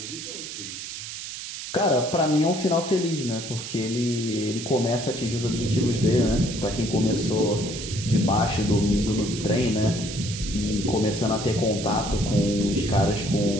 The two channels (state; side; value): noise; right; hiss, 8 dB below the sound